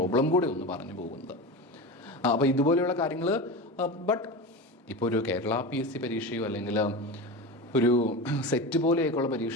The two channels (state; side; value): normal; both; correlation 0.25